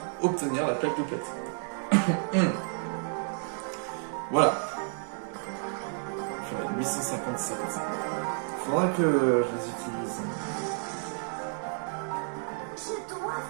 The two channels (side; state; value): left; silent; 57 dB below the other